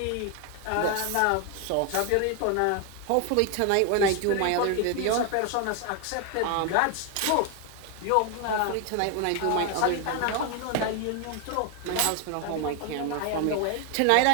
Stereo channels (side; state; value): both; different; correlation 0.01